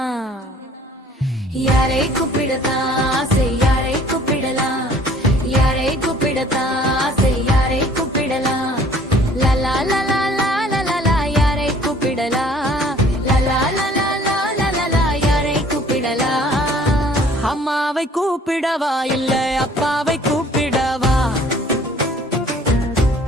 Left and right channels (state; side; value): normal; both; correlation 0.54